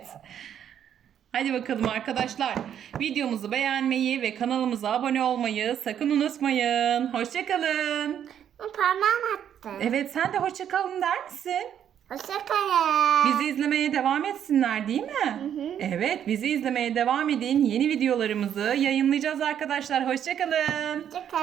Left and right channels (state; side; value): quieter; left; 9.5 dB